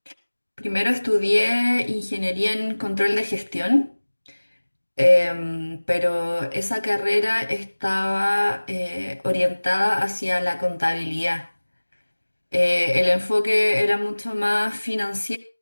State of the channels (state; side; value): inverted; both; correlation -1.00